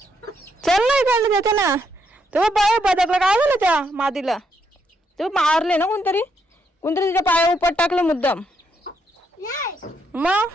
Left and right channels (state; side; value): normal; both; correlation 0.77